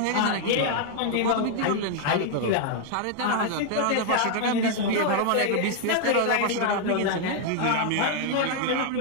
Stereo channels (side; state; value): both; different; correlation 0.00